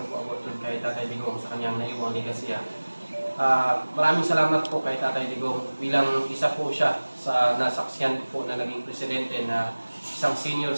ko about kay Tatay Digong sa kanyang naiwang legacy. Maraming salamat po kay Tatay Digong bilang isa po siya sa nasaksiyan po na naging presidente na isang senior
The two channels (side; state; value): both; inverted; correlation -1.00